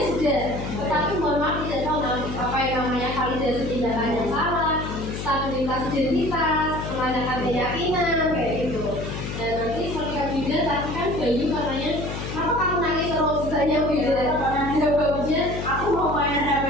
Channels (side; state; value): left; noise; hum, 6 dB below the sound